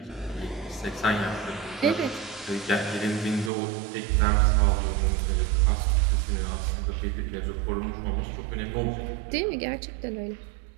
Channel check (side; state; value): left; drops out; at 3.5 s